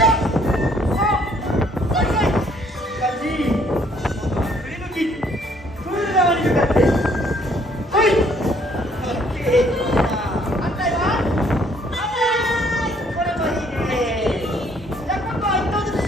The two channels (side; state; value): both; normal; correlation 0.64